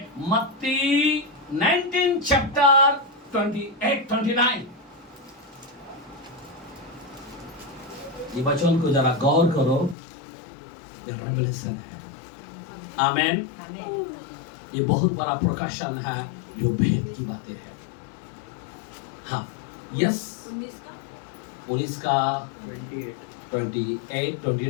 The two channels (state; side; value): drops out; right; at 10.0 s